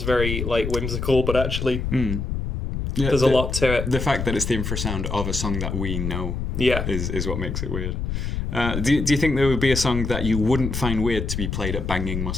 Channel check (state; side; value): noise; left; rumble, 3 dB below the sound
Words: very like whimsical, but actually there's a lot to it. The fact that it's the infrasound of a song that we know, is what makes it weird. Do you think there would be a song that you wouldn't find weird to be played at banging